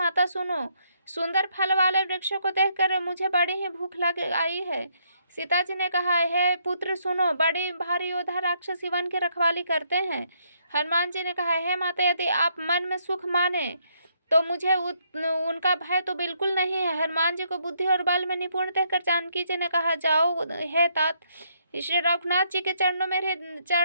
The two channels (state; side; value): inverted; both; correlation -0.72